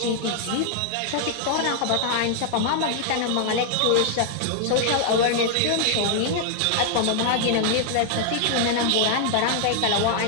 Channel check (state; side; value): different; both; correlation -0.01